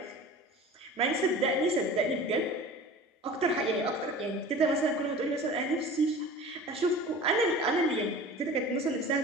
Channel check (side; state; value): both; normal; correlation 0.39